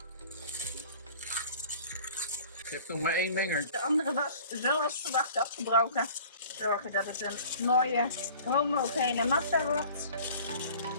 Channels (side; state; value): both; inverted; correlation -0.47